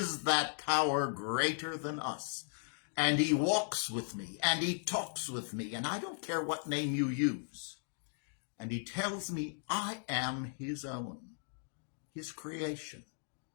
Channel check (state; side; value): silent; right; digital silence